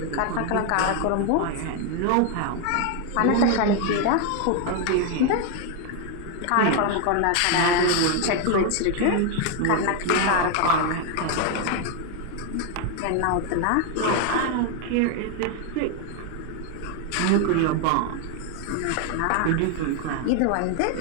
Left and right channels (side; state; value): both; different; correlation 0.01